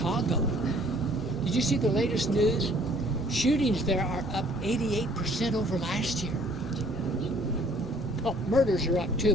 Did you see the latest news? Shootings there are up 88% over last year. Well, murders are up too,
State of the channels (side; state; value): both; normal; correlation 0.57